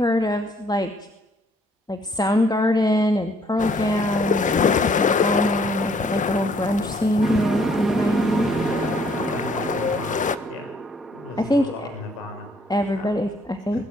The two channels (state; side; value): normal; both; correlation 0.64